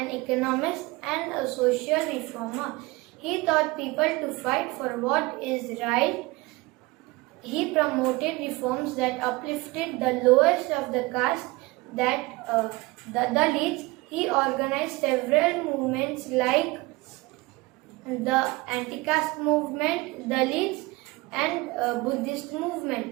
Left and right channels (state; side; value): quieter; left; 22.5 dB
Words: economist, and a social reformer. He taught people to fight for what is right. He promoted reforms that uplifted the lowest of the caste, the Dalits. He organized several movements like the anti-caste movement, Dalits, and Buddhist